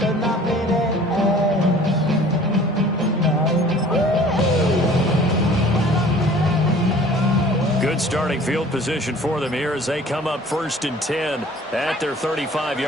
Starting field position for them here as they come up 1st and 10 at their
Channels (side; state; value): both; normal; correlation 0.49